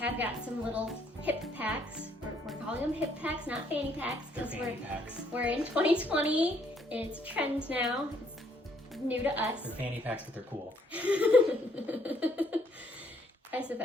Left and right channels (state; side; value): normal; both; correlation 0.67